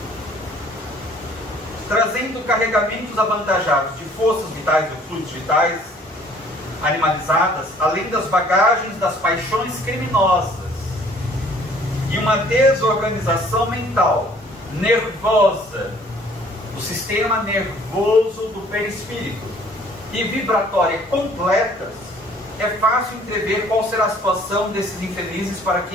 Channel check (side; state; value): both; normal; correlation 0.56